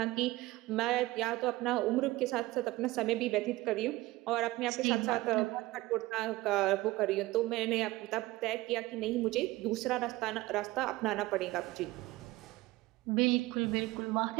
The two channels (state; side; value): quieter; left; 19.2 dB